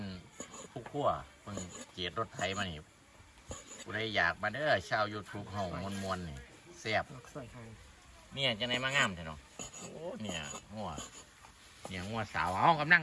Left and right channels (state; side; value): identical; both; correlation 1.00